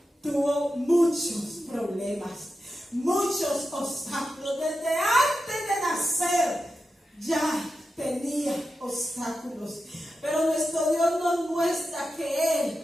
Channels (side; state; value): both; normal; correlation 0.90